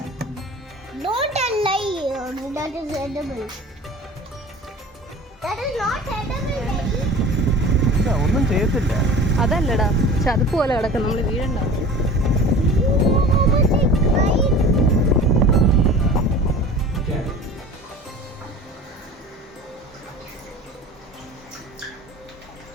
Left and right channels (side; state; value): both; normal; correlation 0.40